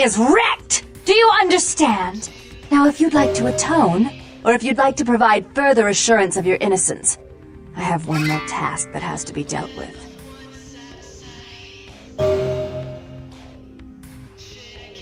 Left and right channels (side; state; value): both; identical; correlation 1.00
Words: wrecked! Do you understand? Now, if you'd like to atone, or if you'd like to provide further assurance of your innocence, I have one more task that has to be dealt with.